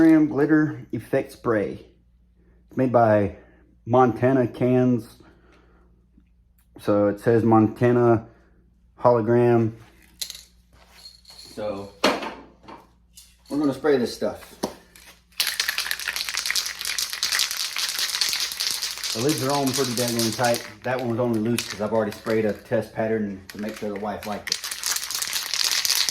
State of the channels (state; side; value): identical; both; correlation 1.00